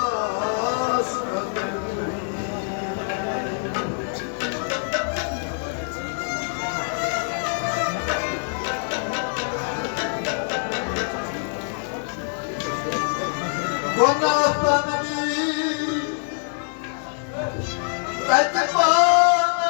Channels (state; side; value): silent; right; 62 dB below the other